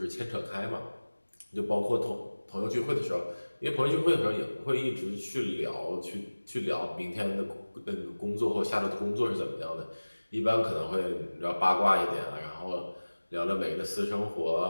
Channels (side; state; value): both; inverted; correlation -1.00